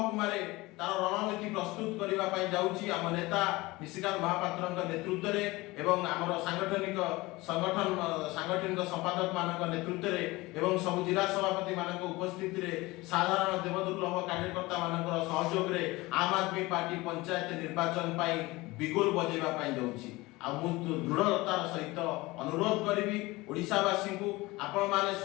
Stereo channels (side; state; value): right; quieter; 21.2 dB